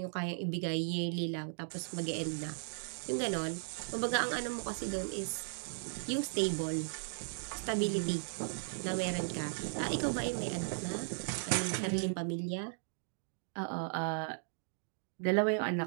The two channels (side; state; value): left; silent; digital silence